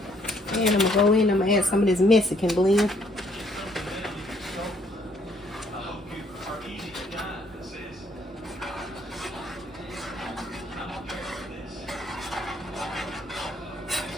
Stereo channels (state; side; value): normal; both; correlation 0.66